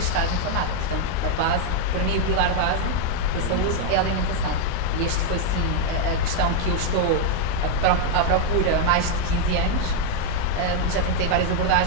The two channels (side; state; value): both; different; correlation 0.00